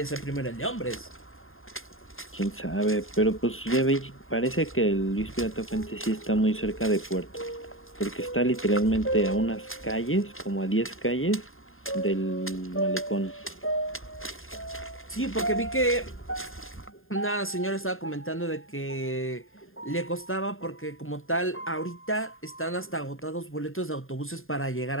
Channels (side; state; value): right; late; 0.60 ms